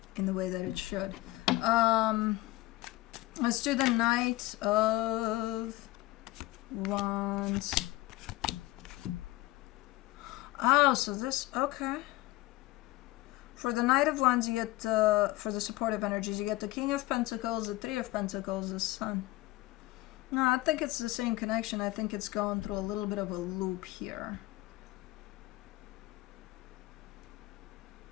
in the way that it should. Let's do the Knight of Wands. Oh, so this, okay. For the Knight of Wands, you get, for the supportive energies, you get the King of Pentacles, the Three of Pentacles, the Sun. No, I think it's the same connection. I think it's going through a little bit of a loop here.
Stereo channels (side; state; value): right; quieter; 18.8 dB